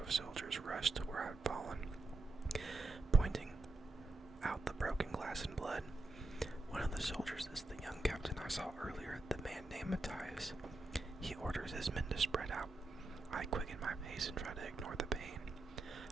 of soldiers rush to where I'd fallen, pointing out the broken glass and blood. One of the soldiers is the young captain I saw earlier, the man named Matthias. He orders his men to spread out. I quicken my pace and try to ignore the pain.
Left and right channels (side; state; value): left; quieter; 3.2 dB